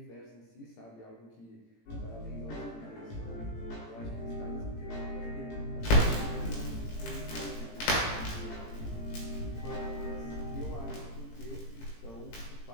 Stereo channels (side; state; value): right; late; 18 ms